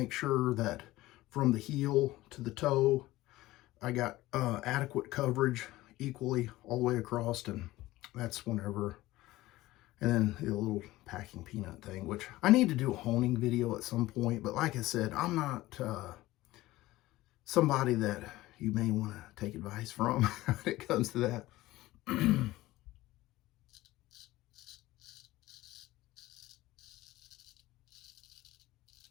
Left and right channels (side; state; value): right; quieter; 17.5 dB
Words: sure that from the heel to the toe, I got adequate coverage equally all the way across. And that's whenever, and then the little packing peanut thing, which I need to do a honing video at some point. But like I said, I'm not somebody that you may want to take advice from when it comes to that.